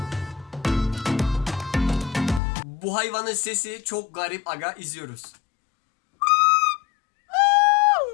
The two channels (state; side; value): drops out; right; at 2.4 s